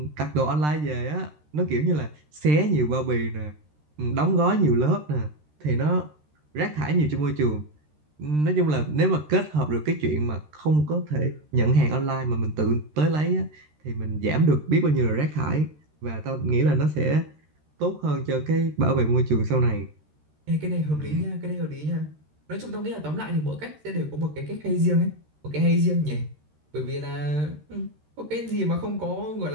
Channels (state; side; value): late; left; 13 ms